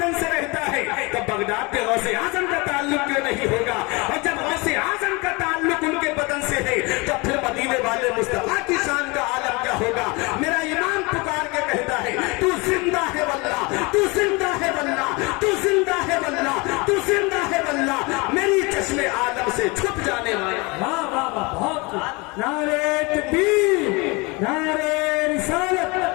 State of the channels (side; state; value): right; quieter; 26.7 dB